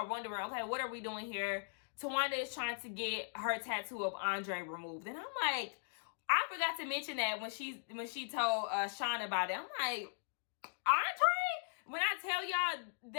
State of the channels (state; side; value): silent; right; digital silence